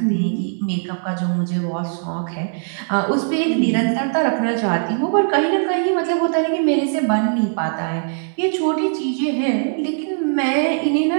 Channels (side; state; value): left; silent; 62 dB below the other